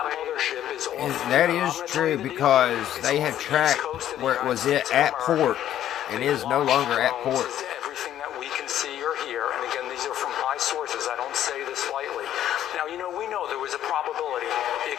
mothership is off. That is true because they have tracked where it was at port and is no longer at port. Everything that don't say this lightly. Now, we know there was a probability it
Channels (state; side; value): quieter; right; 11.5 dB